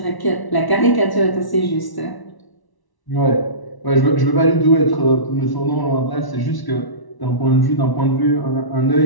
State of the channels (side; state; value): right; late; 1.1 ms